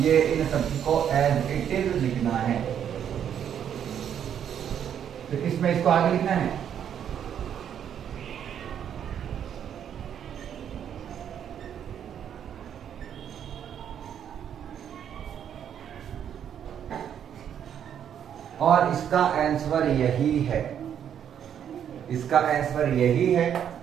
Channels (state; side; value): quieter; left; 9.0 dB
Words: इन सबको एज इट इज लिखना है। तो इसमें इसको आगे लिखना है। और इसका आंसर यही है, इसका आंसर यही है।